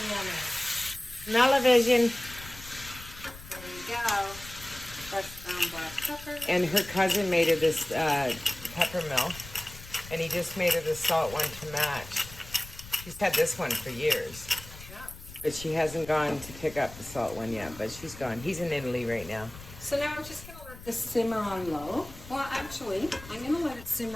yummy. Smell-o-vision. There you go. Fresh ground black pepper. And her cousin made her this pepper mill, and he just made her the salt one to match. She's had this one for years. But she hasn't gone to pick up the salt one yet, but she's gone. He's in Italy right now. So now I'm just going to let this simmer on low. Well, actually, I'm going to let it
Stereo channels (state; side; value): noise; left; rumble, 16 dB below the sound